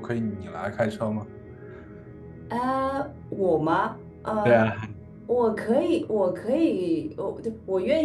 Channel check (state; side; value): identical; both; correlation 1.00